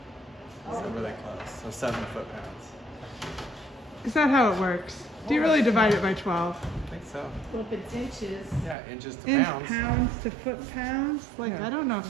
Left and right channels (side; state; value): left; drops out; at 8.8 s